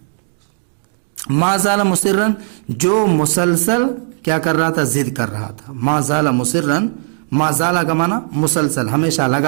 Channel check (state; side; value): silent; left; digital silence